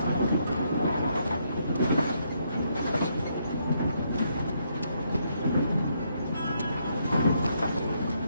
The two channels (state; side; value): inverted; both; correlation -0.75